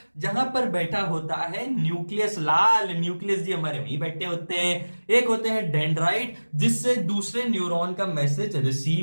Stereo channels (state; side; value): inverted; both; correlation -1.00